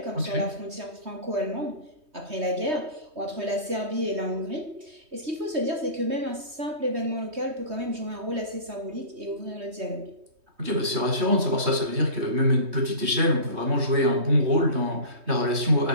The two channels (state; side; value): late; left; 3.2 ms